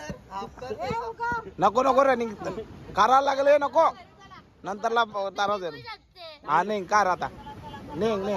नको रनिंग कारा लागले नको. नंतरला तारा दे. हा नाही कार आता नाही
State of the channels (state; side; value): identical; both; correlation 1.00